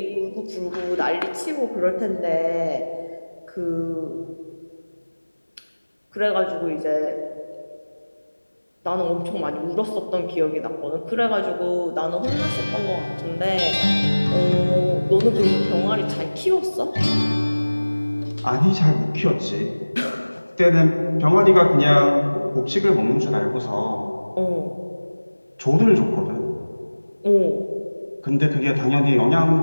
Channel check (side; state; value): both; inverted; correlation -1.00